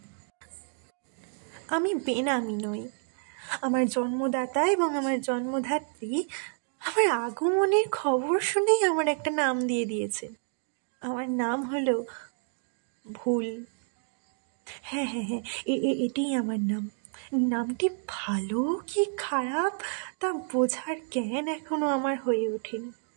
আমি বেনামি নই। আমার জন্মদাতা এবং আমার জন্মধাত্রী আমার আগমনের খবর শুনেই আমার একটা নাম দিয়ে দিয়েছেন। আমার নাম হলো ভুল। হ্যাঁ হ্যাঁ হ্যাঁ, এটাই আমার নাম। নামটি ভালো কি খারাপ তা বোঝার জ্ঞান এখনো আমার হয়ে ওঠেনি,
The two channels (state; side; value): silent; left; 58 dB below the other